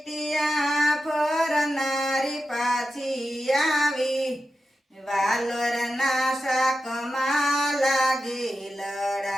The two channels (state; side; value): normal; both; correlation 0.91